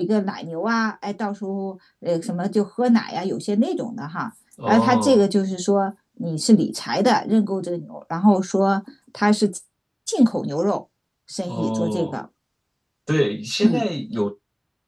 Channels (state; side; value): identical; both; correlation 1.00